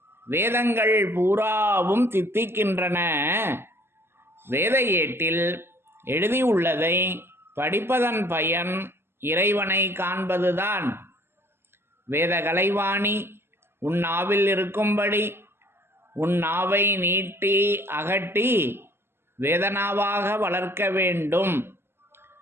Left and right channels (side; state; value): left; late; 0.11 ms